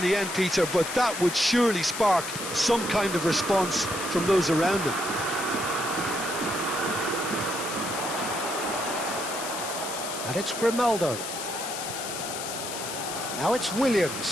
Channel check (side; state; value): left; noise; hiss, 7 dB below the sound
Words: the end, Peter, but that would surely spark some kind of response from those around him. And it's Grimaldo. Now it's